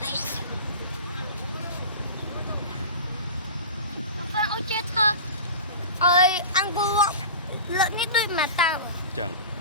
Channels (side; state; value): both; inverted; correlation -0.32